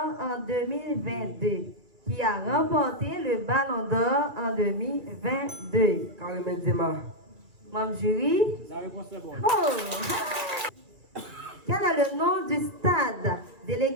en 2022. Qui a remporté le Ballon d'Or en 2022? Karim Benzema. Mon jury? La réponse est bonne. Oh! Quel est le nom du stade de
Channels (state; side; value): late; left; 2.3 ms